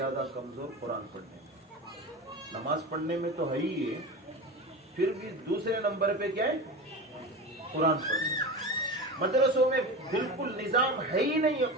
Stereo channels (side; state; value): both; normal; correlation 0.26